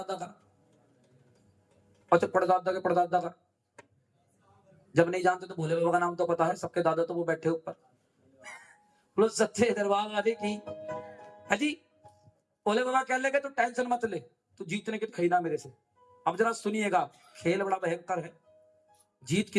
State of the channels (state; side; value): identical; both; correlation 1.00